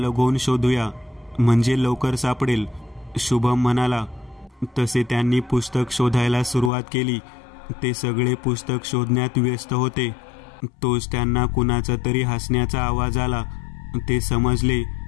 होऊन शोधूया, म्हणजे लवकर सापडेल. शुभम म्हणाला. तसे त्यांनी पुस्तक शोधायला सुरुवात केली. ते सगळे पुस्तक शोधण्यात व्यस्त होते. तोच त्यांना कुणाचा तरी हसण्याचा आवाज आला. ते समजले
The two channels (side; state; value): right; drops out; at 6.7 s